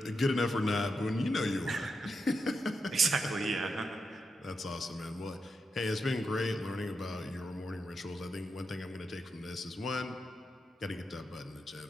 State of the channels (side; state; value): both; normal; correlation 0.86